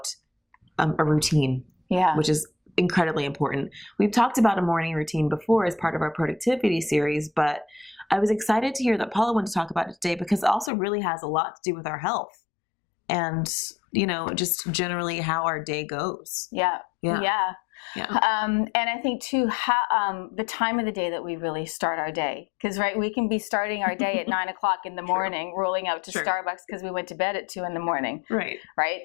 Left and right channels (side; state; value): right; drops out; at 10.7 s